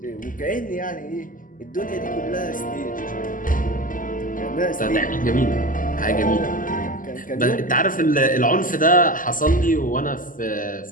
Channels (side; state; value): right; late; 0.39 ms